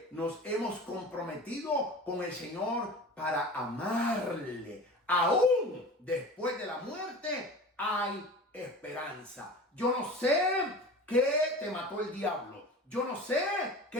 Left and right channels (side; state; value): both; normal; correlation 0.35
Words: nos hemos comprometido con el Señor para amarle. Aún después de la muerte hay esperanza. Yo no sé qué te mató el diablo. Yo no sé